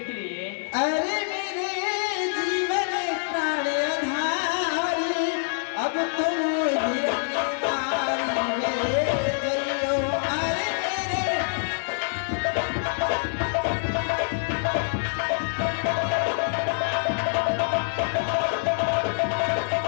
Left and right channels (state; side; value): silent; right; digital silence